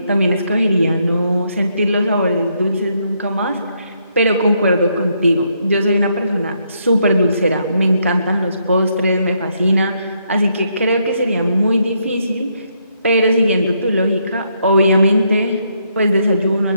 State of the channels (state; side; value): inverted; both; correlation -0.75